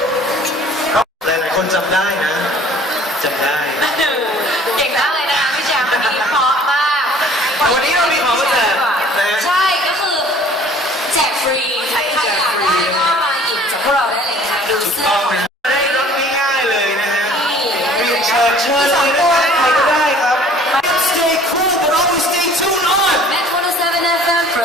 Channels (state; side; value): normal; both; correlation 0.51